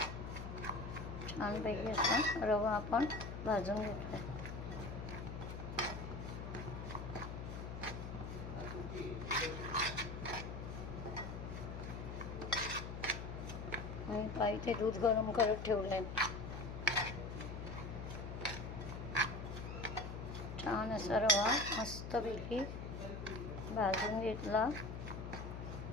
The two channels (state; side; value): noise; left; hum, 7 dB below the sound